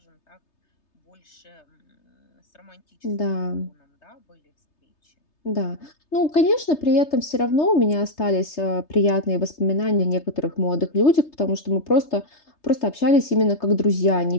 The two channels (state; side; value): late; right; 3.3 ms